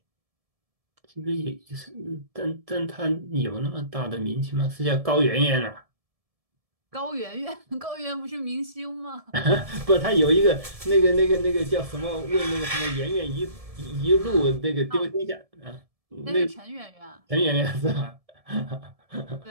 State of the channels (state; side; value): late; left; 1.7 ms